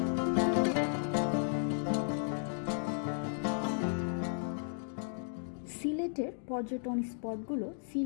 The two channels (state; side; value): silent; right; digital silence